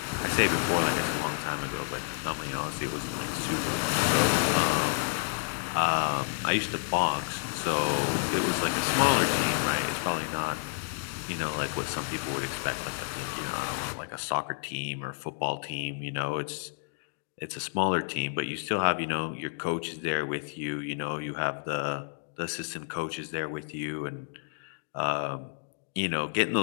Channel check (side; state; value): right; silent; digital silence